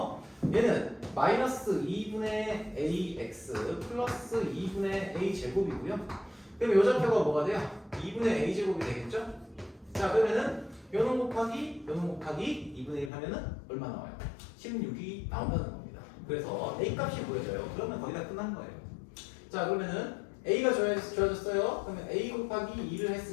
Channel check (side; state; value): right; drops out; at 13.1 s